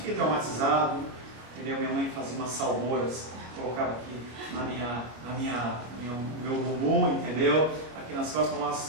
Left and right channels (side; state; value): left; late; 25 ms